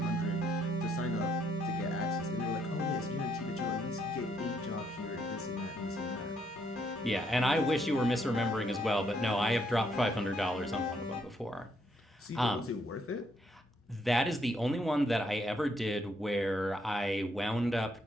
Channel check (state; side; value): normal; both; correlation 0.73